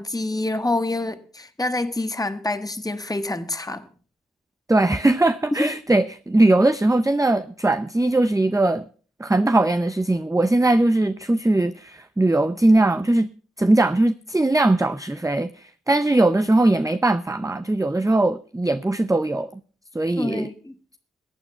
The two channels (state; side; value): normal; both; correlation 0.91